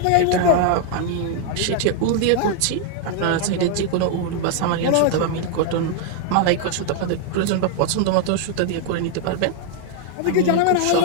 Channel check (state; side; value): different; both; correlation 0.00